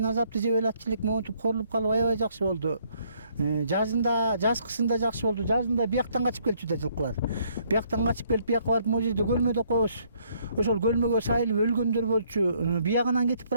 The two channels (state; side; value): inverted; both; correlation -0.67